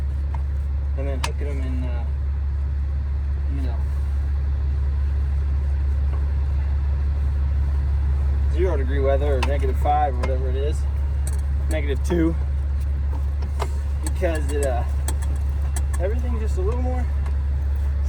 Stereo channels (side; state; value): both; identical; correlation 1.00